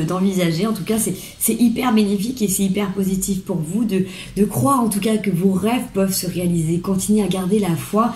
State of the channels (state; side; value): identical; both; correlation 1.00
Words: d'envisager. En tout cas, c'est hyper bénéfique et c'est hyper positif pour vous de croire en tout cas que vos rêves peuvent se réaliser. Continuez à garder la foi,